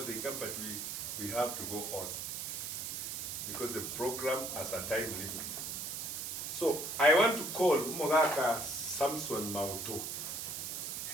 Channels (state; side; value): noise; right; hiss, 4 dB below the sound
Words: they come, but we have to go on because the program has a time limit. So I want to call Mogaka Samson Mauto.